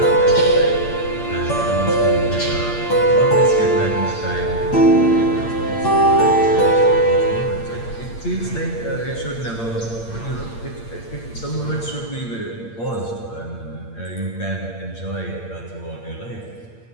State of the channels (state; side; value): late; right; 8.7 ms